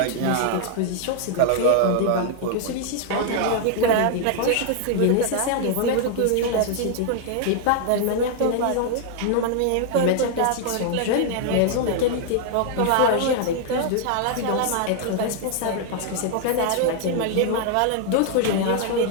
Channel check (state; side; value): different; both; correlation 0.00